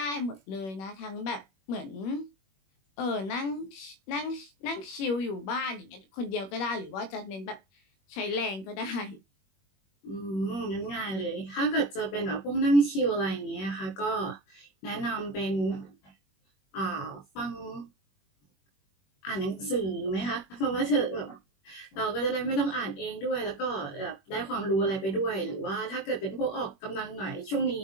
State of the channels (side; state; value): right; late; 21 ms